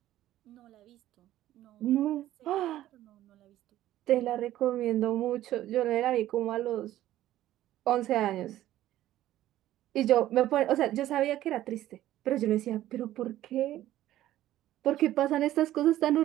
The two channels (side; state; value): left; quieter; 13.8 dB